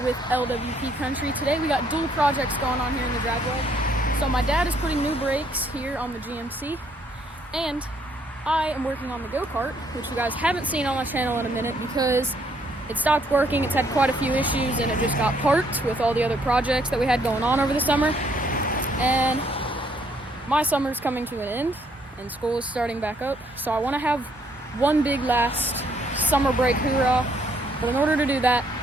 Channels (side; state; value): both; normal; correlation 0.68